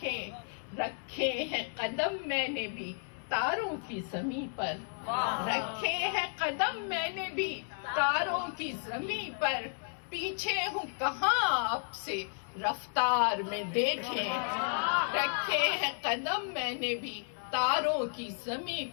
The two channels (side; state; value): right; silent; 56 dB below the other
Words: رکھے ہیں قدم میں نے بھی تاروں کی زمیں پر، رکھے ہیں قدم میں نے بھی تاروں کی زمیں پر، پیچھے ہوں کہاں آپ سے رفتار میں دیکھیں، رکھے ہیں قدم میں نے بھی تاروں کی زمیں